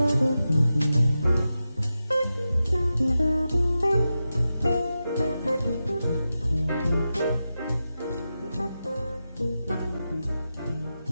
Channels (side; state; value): both; inverted; correlation -0.91